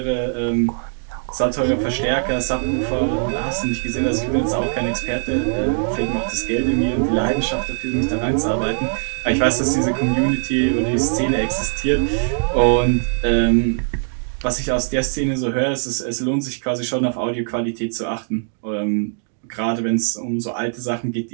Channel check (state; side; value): silent; left; 64 dB below the other